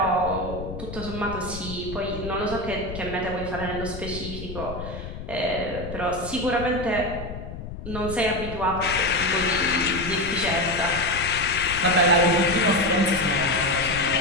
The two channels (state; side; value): noise; left; rumble, 10 dB below the sound